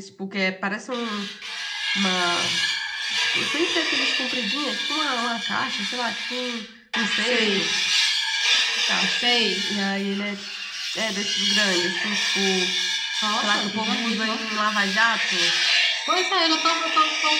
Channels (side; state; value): both; identical; correlation 1.00